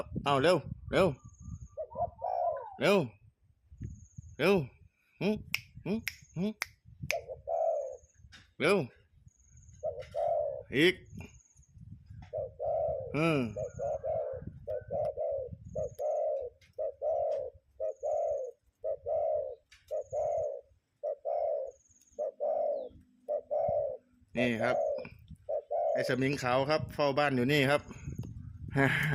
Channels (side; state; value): both; identical; correlation 1.00